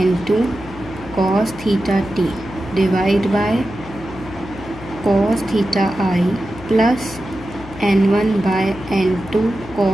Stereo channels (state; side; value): noise; left; hum, 16 dB below the sound